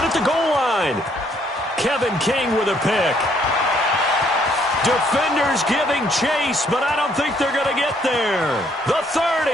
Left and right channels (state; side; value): normal; both; correlation 0.67